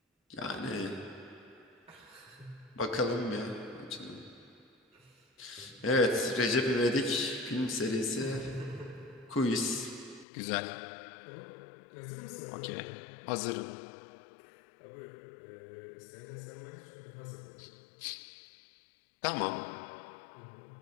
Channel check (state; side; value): drops out; right; at 10.2 s